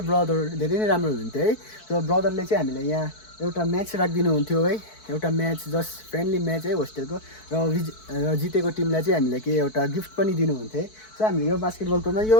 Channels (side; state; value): right; late; 4.6 ms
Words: ब्रदर धेरै नै राम्रो हुन्थ्यो है। र ब्रदरले चाहिँ हामीलाई यहाँ एउटा म्याच राखिदिनु हुन्थ्यो है, एउटा म्याच, जस्ट फ्रेन्डली म्याच है होस्टेलको। र जितेको टिमलाई चाहिँ हामीलाई के एउटा गिफ्ट पनि दिनुहुन्थ्यो है। सो हामीले यो बास्केटबल कोर्टमा, यो